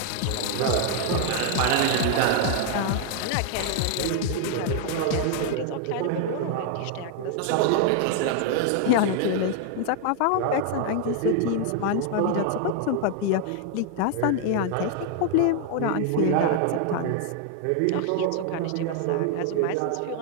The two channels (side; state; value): both; different; correlation 0.00